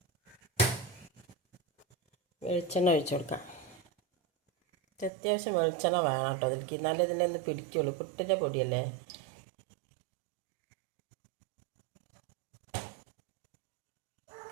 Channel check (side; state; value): left; drops out; at 5.1 s